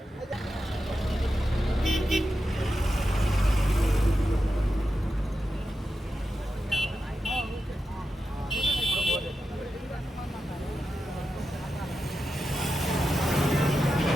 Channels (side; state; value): both; normal; correlation 0.90